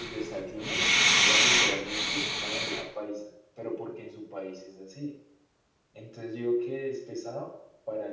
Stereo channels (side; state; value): both; identical; correlation 1.00